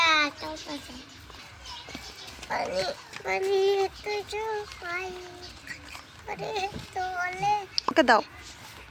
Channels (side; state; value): both; identical; correlation 1.00